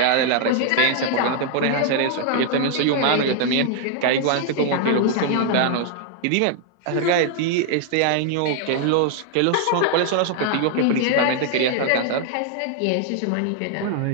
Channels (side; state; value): both; different; correlation 0.00